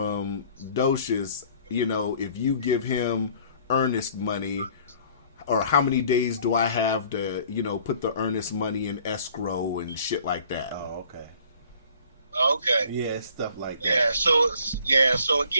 Docious, you know, if you give him earnest money, or how many days do I have to, you know, put the earnest money in escrow and shit like that. Oh, okay. Okay. Yeah, stuff like that. So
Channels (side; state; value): both; inverted; correlation -0.55